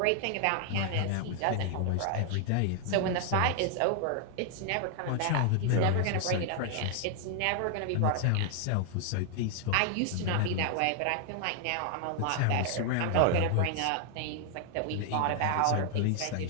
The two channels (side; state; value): both; different; correlation 0.00